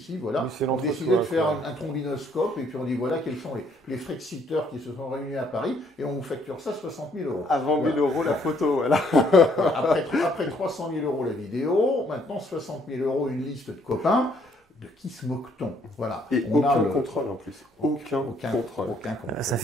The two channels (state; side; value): normal; both; correlation 0.66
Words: Oui, c'est on l'entre-soi, décidait de faire quoi. un trombinoscope et puis on dit voilà quels sont les Frexiteurs qui se sont réunis à Paris et on vous facture ça 60 000 euros. Avant 1000 euros la photo, voilà. Après 300 000 euros la vidéo, maintenant 60 000 euros une liste de copains. De qui se moque-t-on? Voilà. Et aucun contrôle en plus. Aucun contrôle. Ça